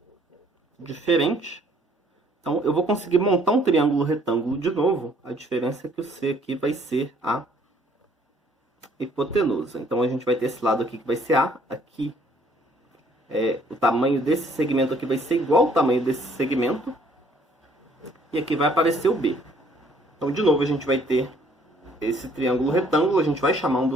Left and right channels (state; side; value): normal; both; correlation 0.62